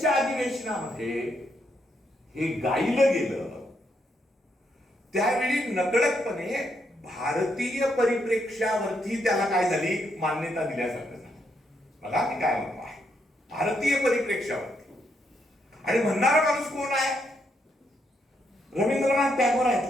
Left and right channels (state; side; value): normal; both; correlation 0.77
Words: अधिवेशनामध्ये हे गायलं गेलं, त्यावेळी नकळतपणे भारतीय परिप्रेक्ष्यावरती त्याला काय झाली? मान्यता दिल्यासारखं झालं. बघा मी काय म्हणतो आहे, भारतीय परिप्रेक्ष्यावरती. आणि म्हणणारा माणूस कोण आहे? रवींद्रनाथ टागोर